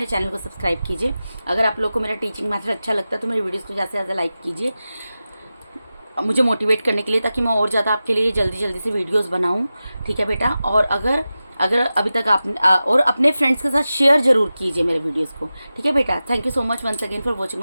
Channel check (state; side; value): inverted; both; correlation -0.94